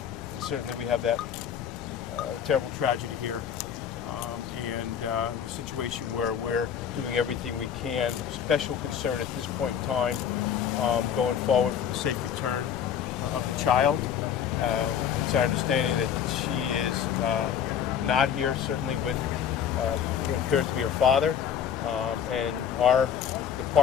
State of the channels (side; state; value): right; quieter; 8.5 dB